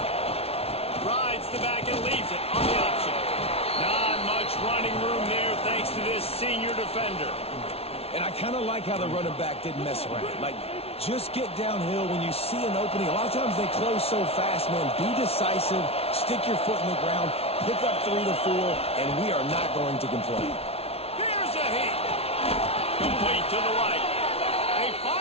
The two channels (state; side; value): late; right; 0.30 ms